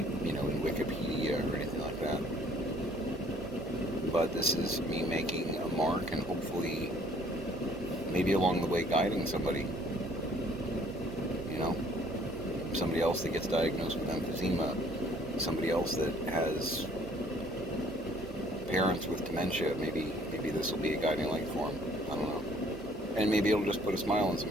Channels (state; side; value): normal; both; correlation 0.59